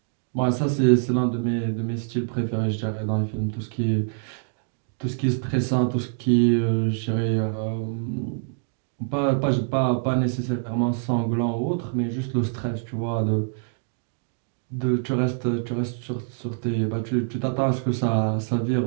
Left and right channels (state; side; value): silent; left; 61 dB below the other